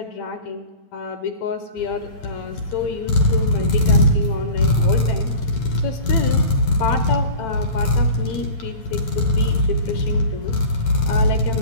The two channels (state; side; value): late; right; 9.0 ms